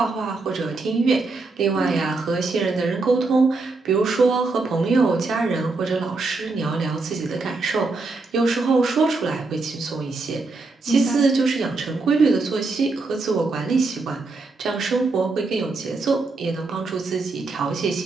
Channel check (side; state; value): left; quieter; 3.7 dB